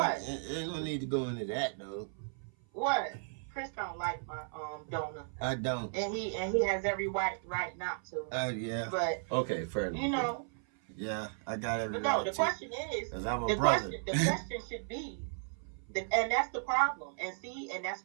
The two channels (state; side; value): silent; left; 54 dB below the other